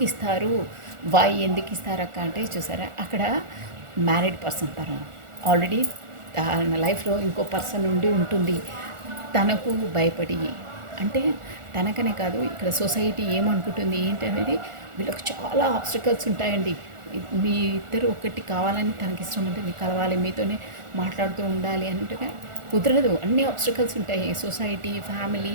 ఇస్తారు? ఎందుకు ఇస్తారు అక్క అంటే చూసారా, అక్కడ మ్యారీడ్ పర్సన్ తను ఆల్రెడీ తన లైఫ్లో ఇంకో పర్సన్ ఉండి ఉంటుంది. తనకు భయపడి, అంటే తనకనే కాదు ఇక్కడ సొసైటీ ఏమనుకుంటుంది ఏంటి అనేది వీళ్ళకి చాలా ఆబ్స్టికల్స్ ఉంటాయండి. మీ ఇద్దరు ఒకటి కావాలని తనకి ఇష్టం ఉంటుంది, కలవాలి, మీతోనే మాట్లాడుతూ ఉండాలి అంటే కుదరదు. అన్ని ఆబ్స్టికల్స్ ఉంటాయి. సొసైటీ,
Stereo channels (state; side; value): late; left; 1.4 ms